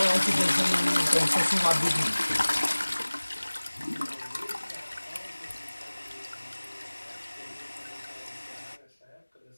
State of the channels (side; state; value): both; inverted; correlation -1.00